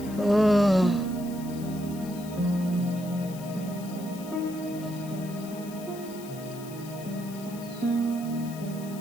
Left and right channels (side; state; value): left; noise; hiss, 17 dB below the sound